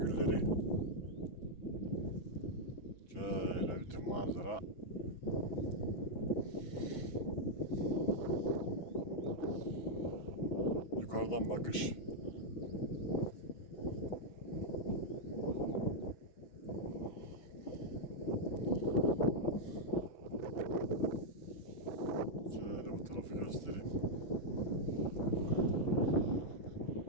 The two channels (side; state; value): right; late; 6.1 ms